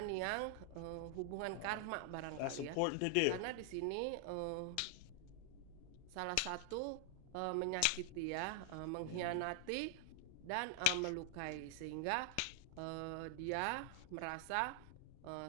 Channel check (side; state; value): both; different; correlation 0.00